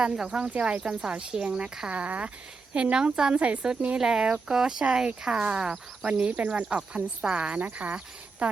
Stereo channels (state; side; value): quieter; left; 4.4 dB